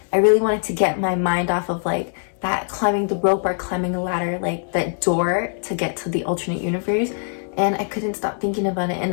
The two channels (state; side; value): silent; right; 64 dB below the other